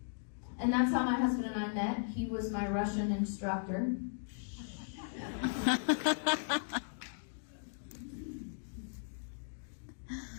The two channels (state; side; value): silent; right; digital silence